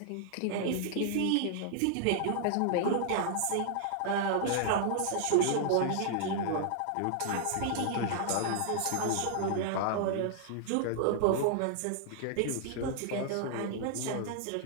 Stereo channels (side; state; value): both; different; correlation -0.01